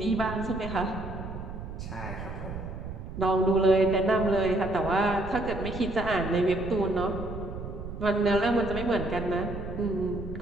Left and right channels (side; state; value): right; noise; rumble, 9 dB below the sound